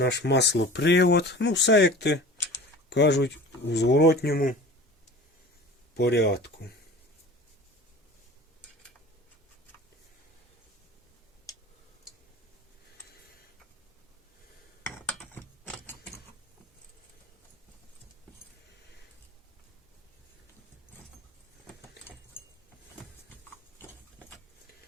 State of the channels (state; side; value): normal; both; correlation 0.40